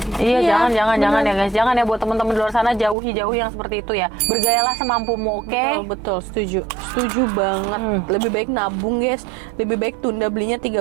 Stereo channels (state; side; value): drops out; left; at 3.0 s